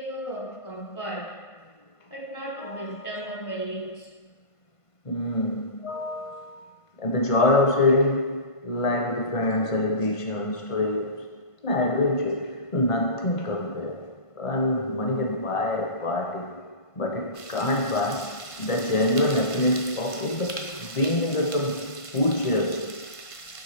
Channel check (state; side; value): late; right; 1.5 ms